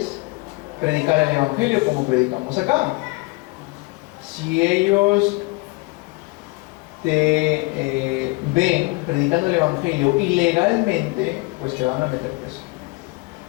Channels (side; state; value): right; quieter; 25.2 dB